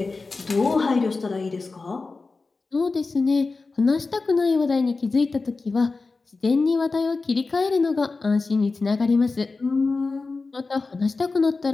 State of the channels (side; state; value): right; quieter; 3.9 dB